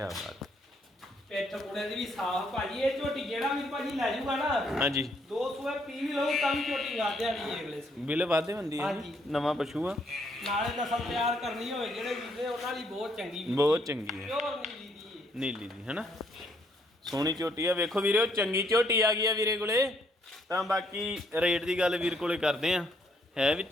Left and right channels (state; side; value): normal; both; correlation 0.70